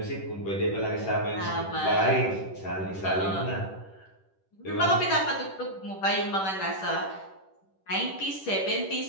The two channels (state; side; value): late; right; 10 ms